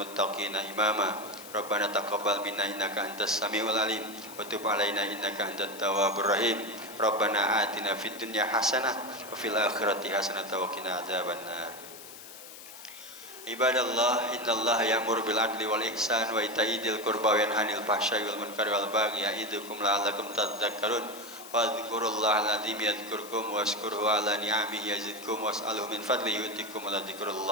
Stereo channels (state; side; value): noise; left; hiss, 15 dB below the sound